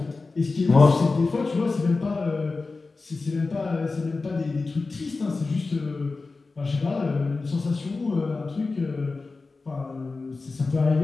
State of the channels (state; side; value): quieter; right; 3.8 dB